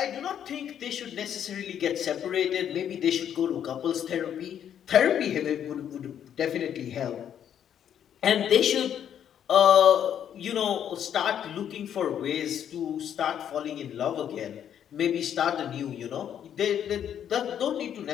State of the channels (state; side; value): quieter; right; 9.4 dB